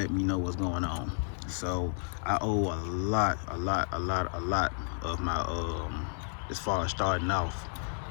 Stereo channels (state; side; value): silent; right; 57 dB below the other